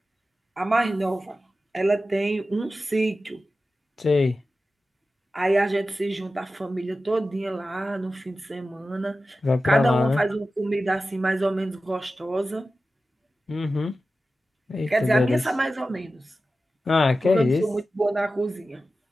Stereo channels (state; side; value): normal; both; correlation 0.94